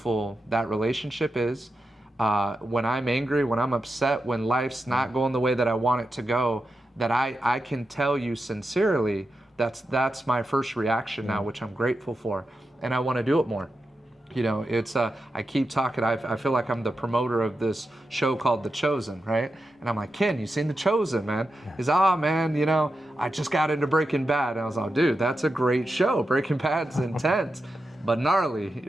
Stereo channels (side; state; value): both; normal; correlation 0.89